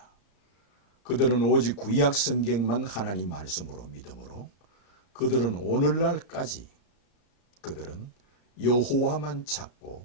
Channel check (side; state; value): right; late; 34 ms